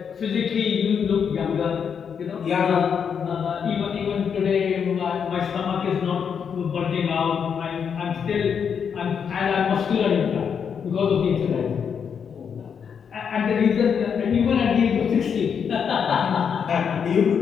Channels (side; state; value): right; quieter; 7.1 dB